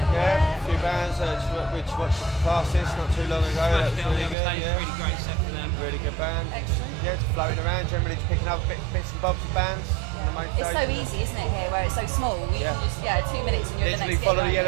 Yeah, a few bands which watched classes not too long ago. That was really good. Yeah. Really great set for them. Really good band. Excellent. Yeah, just floating around, generally just picking up bits and bobs of bands. On the main It's so stage. easy, isn't it, here, where it's so small. You Yeah. can just, 2 minutes and you're at the Literally next follow gig, the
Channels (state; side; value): drops out; left; at 4.4 s